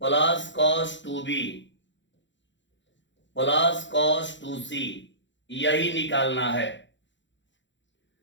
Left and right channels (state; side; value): late; right; 0.54 ms